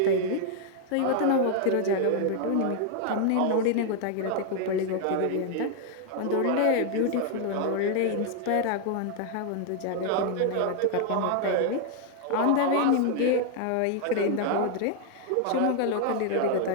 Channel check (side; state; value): both; different; correlation 0.00